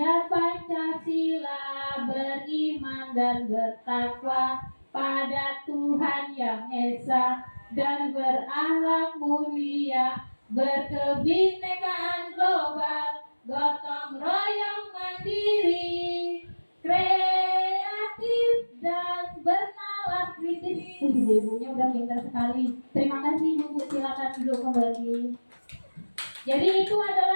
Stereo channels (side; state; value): both; inverted; correlation -1.00